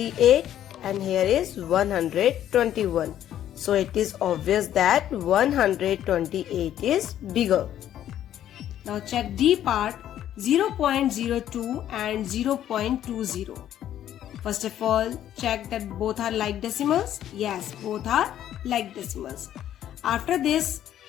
and here is 121. So it is obvious that 128 is bigger. Now check D part, 0.02 and 0.20. First of all, check that both are like decimals. Yes, both are like decimals. After this,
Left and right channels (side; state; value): right; quieter; 11.3 dB